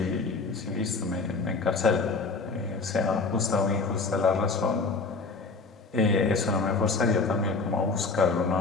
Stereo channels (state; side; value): quieter; right; 4.1 dB